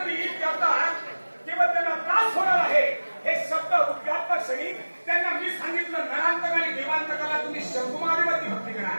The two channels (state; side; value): inverted; both; correlation -1.00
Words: केवळ त्यांना त्रास होणार आहे. हे शब्द उद्गारता क्षणी त्यांना मी सांगितलं, नरांतक आणि देवांतकाला तुम्ही शंभू महादेवाची भक्ती करा.